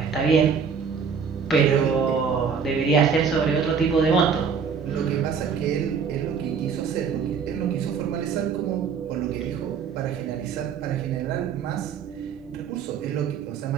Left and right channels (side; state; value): left; quieter; 6.4 dB